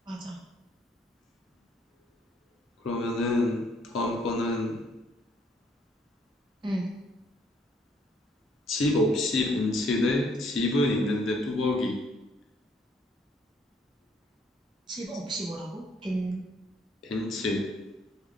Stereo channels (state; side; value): normal; both; correlation 0.66